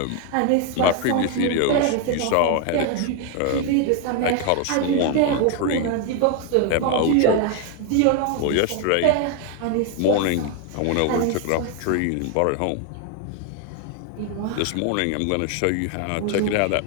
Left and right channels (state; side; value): different; both; correlation 0.01